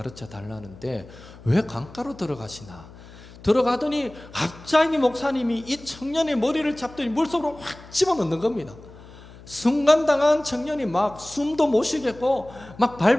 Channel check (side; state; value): left; noise; hum, 19 dB below the sound